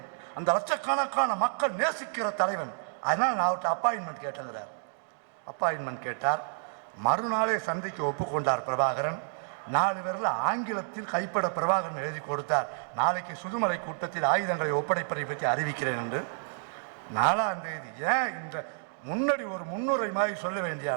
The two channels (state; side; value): silent; left; digital silence